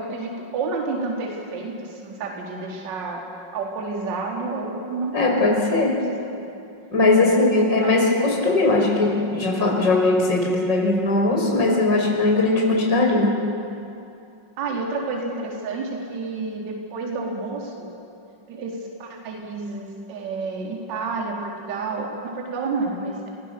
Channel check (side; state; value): left; late; 5.5 ms